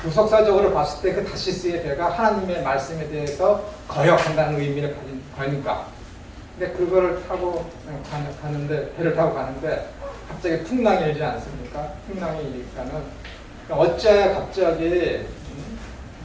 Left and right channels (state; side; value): identical; both; correlation 1.00